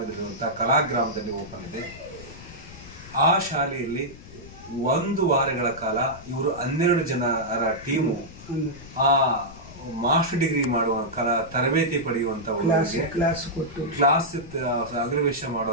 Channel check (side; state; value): left; noise; rumble, 18 dB below the sound